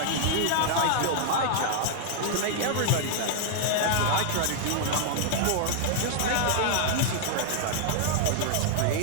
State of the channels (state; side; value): different; both; correlation -0.01